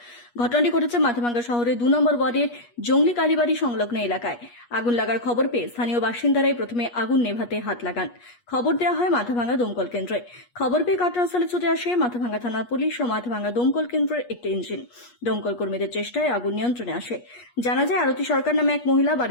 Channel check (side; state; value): right; late; 8.3 ms